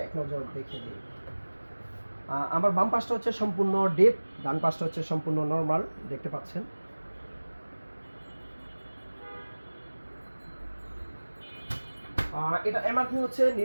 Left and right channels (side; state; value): both; inverted; correlation -1.00